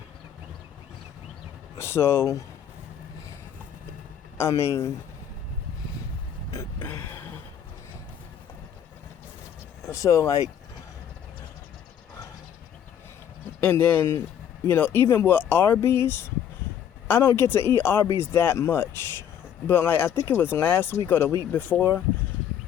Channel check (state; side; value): quieter; right; 9.2 dB